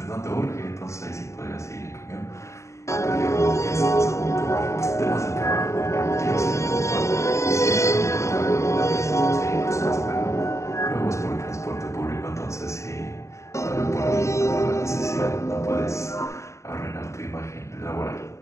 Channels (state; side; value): late; right; 0.14 ms